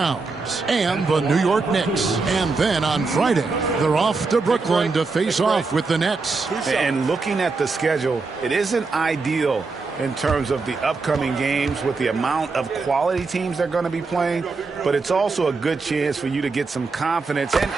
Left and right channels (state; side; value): quieter; left; 4.1 dB